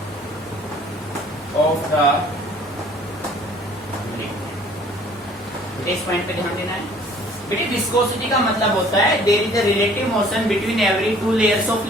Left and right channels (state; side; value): normal; both; correlation 0.54